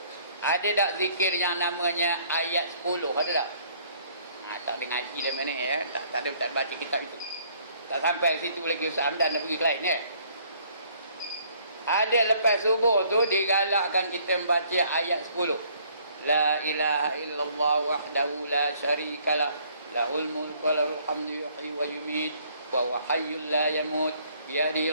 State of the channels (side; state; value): both; inverted; correlation -0.61